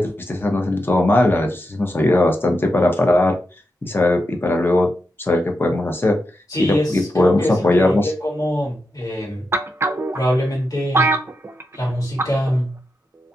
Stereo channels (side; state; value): both; normal; correlation 0.87